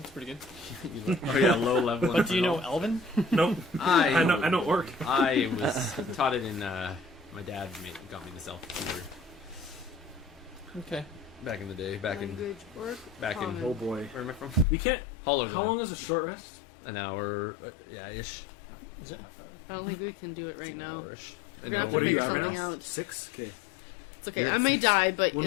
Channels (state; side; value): drops out; right; at 14.7 s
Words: pretty good. Oh yeah, low level. But do you know Elven? Nope. I I know Orc. I was taught it in. My dad got me this elf tutor Okay. back in the day. Back in Language, work, common. Oh boy. where am I from? We can't. Hollow. How long is a short rest? An hour. Yeah, ish. Is it? Half hour? I don't think we can do it right now. Hour-ish. We're gonna have to What are you figure at right something now? out. 6. Okay. It's okay. You're I at may 6. die, but When